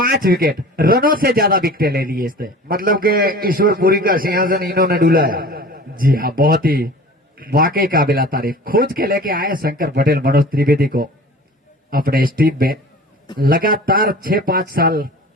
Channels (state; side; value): normal; both; correlation 0.41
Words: विकेट रनों से ज्यादा विकेट ले लिए इसने मतलब के ईश्वरपुरी का सिंहासन इन्होंने डुलाया। जी हाँ बहुत ही वाकई काबिला तारीफ खोज के लेके आए शंकर पटेल मनोज त्रिवेदी को अपने इस टीम में लगातार 6-5 साल